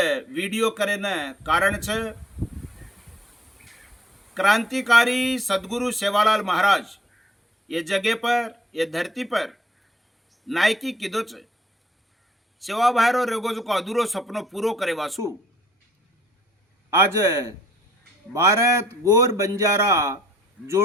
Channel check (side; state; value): both; normal; correlation 0.65